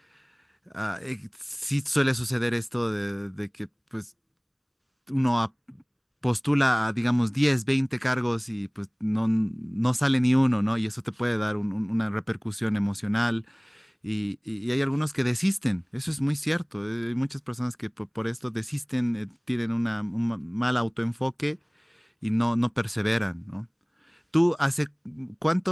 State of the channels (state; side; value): identical; both; correlation 1.00